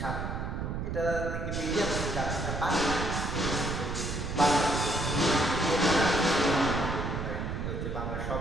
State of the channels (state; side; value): noise; right; rumble, 4 dB below the sound